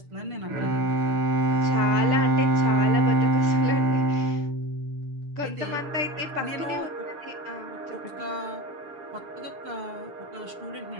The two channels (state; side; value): late; left; 6.7 ms